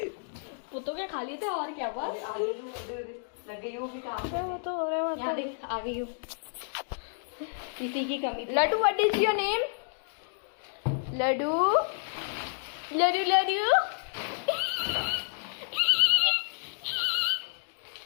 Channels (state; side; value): silent; right; digital silence